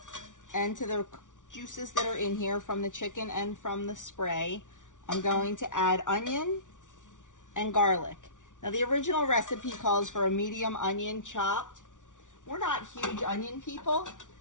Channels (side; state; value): right; late; 0.87 ms